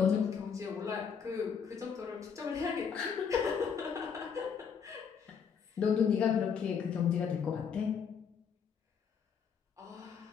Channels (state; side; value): quieter; right; 6.7 dB